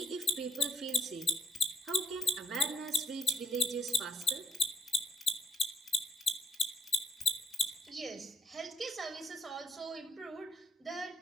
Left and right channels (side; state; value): both; normal; correlation 0.76